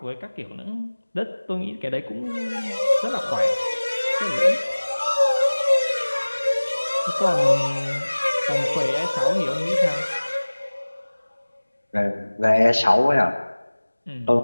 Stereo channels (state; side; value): inverted; both; correlation -1.00